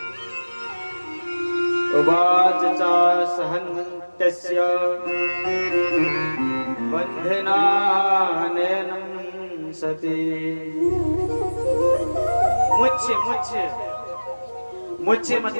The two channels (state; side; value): inverted; both; correlation -1.00